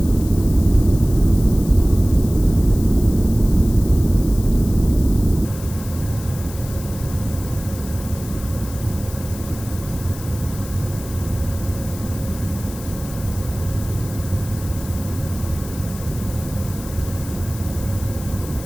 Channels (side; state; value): left; noise; hiss, 15 dB below the sound